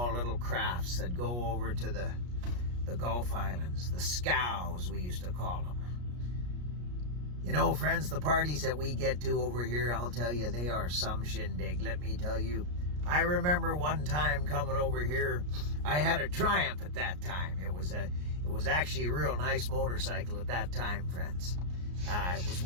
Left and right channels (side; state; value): left; late; 33 ms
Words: little crafts that go over to the Gulf Islands, the scows we used to call them. You know, friends, the parties that we get to over here, I'll tell you, they are some shindig, let me tell you. I remember one time coming over here, I had a Triumph at that time. It was actually a real nice motorcycle at that time, friends. It was